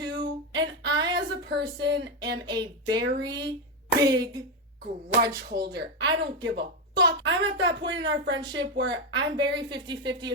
And I, as a person, am a very big grudge holder. I don't give a fuck. I'm at that point in our friendship where I'm very 50-50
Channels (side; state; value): both; normal; correlation 0.08